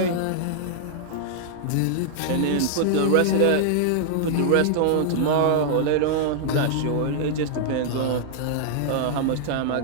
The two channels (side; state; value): both; different; correlation -0.01